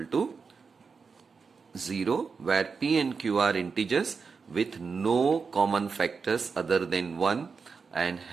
to 0, where p and q are integers with no common factors other than 1 and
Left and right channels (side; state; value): left; quieter; 5.2 dB